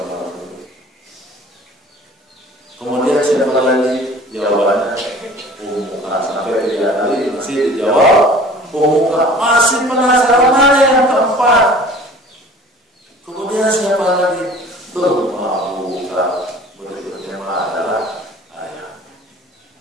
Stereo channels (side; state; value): both; normal; correlation 0.46